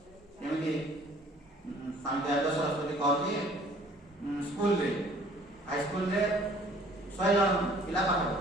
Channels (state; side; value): normal; both; correlation 0.55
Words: ଯେମିତି ସ୍ୱାମୀ ଦୟାନନ୍ଦ ସରସ୍ୱତୀ କହୁଛି ସ୍କୁଲରେ ହାଇସ୍କୁଲରେ 100 ଜଣ ପିଲା ପାଠ